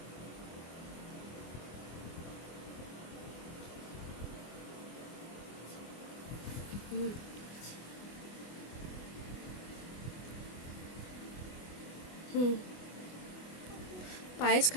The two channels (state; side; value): late; right; 24 ms